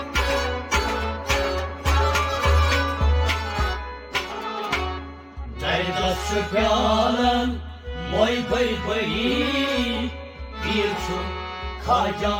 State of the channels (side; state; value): both; identical; correlation 1.00